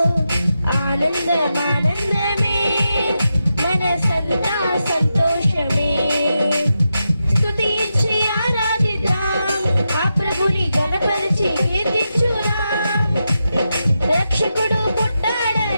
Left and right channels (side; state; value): both; inverted; correlation -0.87